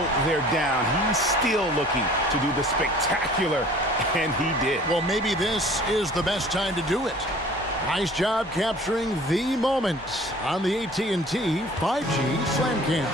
they're down, he's still looking to do the spectacular, and he did. Well, maybe this is the best time to do it. Nice job capturing the moment on the AT&T 5G Slam Cam.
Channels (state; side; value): normal; both; correlation 0.49